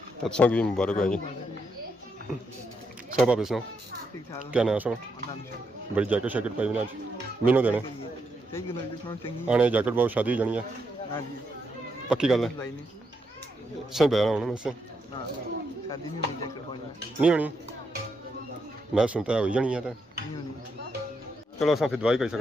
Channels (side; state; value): both; normal; correlation 0.80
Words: तत्सों की भी मुबारक है जी सब आप सुनो क्या नया सुनो बड़ी जैकेट शैकेट पाई ना आज मीनू देने आने जैकेट बहुत शादी हो जानी है पक्की गल है सही बहना होना वैसे नहीं होनी मैं सुनता है हो जानी है तो चलो अस फिर दवाई कर